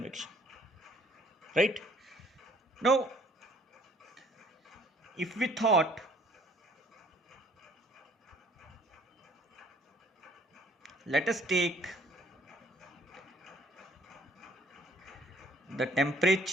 Right? Now, if we thought, let us take the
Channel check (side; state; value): both; normal; correlation 0.60